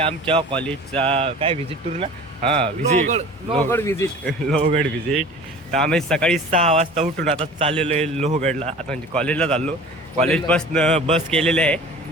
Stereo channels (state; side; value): normal; both; correlation 0.42